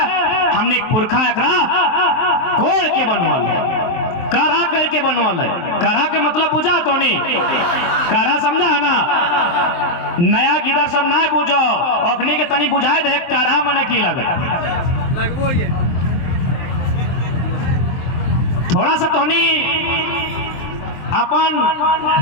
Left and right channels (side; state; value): right; late; 23 ms